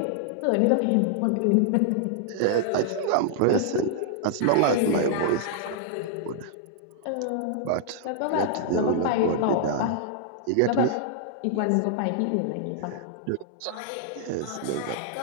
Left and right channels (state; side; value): different; both; correlation -0.01